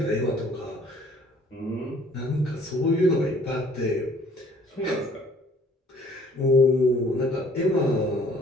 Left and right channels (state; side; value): normal; both; correlation 0.57